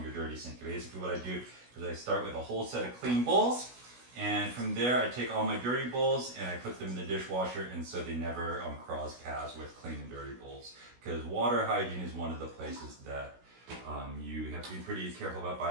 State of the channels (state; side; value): late; left; 16 ms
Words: your dirty sink. Basically what I do is I start with a whole set of clean bowls, and from there I take all my dirty bowls and I put them in the dishwasher, and so they never cross paths with clean and dirty bowls, because water hygiene is one of the places that you have to be pretty careful about